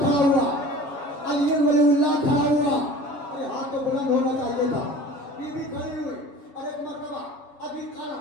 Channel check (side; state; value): right; late; 7.2 ms